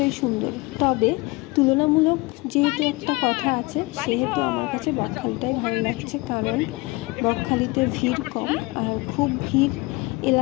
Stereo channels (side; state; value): right; quieter; 23.9 dB